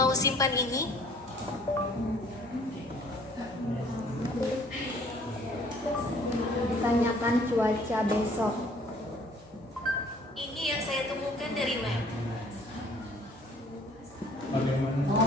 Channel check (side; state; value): both; normal; correlation 0.56